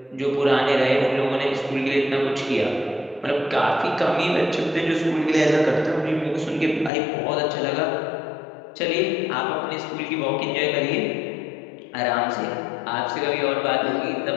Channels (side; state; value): right; drops out; at 6.9 s